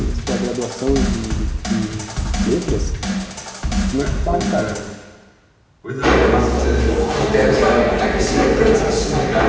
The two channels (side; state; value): both; identical; correlation 1.00